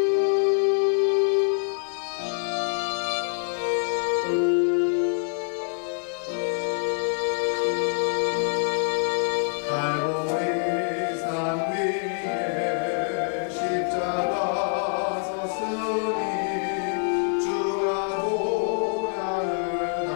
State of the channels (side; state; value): right; silent; 61 dB below the other